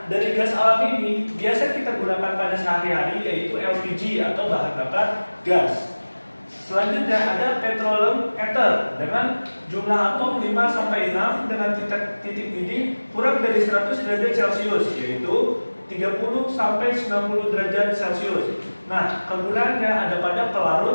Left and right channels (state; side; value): inverted; both; correlation -1.00